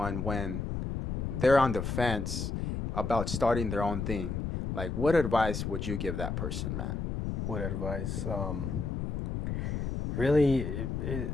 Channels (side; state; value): left; noise; rumble, 3 dB below the sound